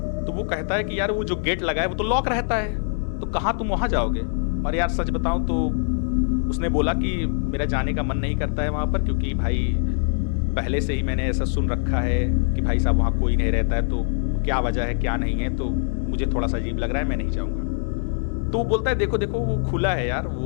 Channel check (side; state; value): right; silent; digital silence